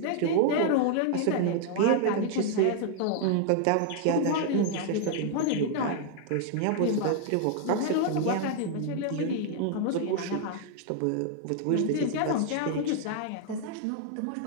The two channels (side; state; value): both; different; correlation 0.00